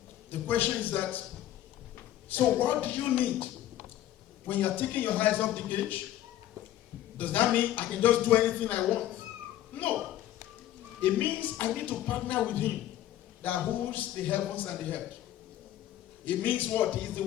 The question is that, so what do you need when you're taking your eyes off the gauge? Does that mean I can just do anything I want? No. It means I need to partner with him that holds the heavens and the earth. It means what? He's the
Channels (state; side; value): quieter; right; 12.9 dB